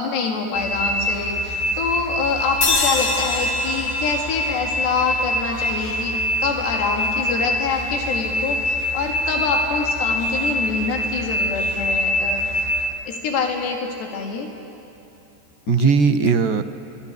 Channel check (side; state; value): right; late; 14 ms